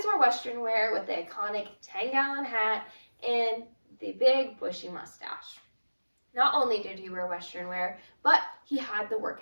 wore Western wear with the iconic 10-gallon hat and the big bushy mustache. Not only did he wear Western wear, but he had the work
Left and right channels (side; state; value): both; inverted; correlation -1.00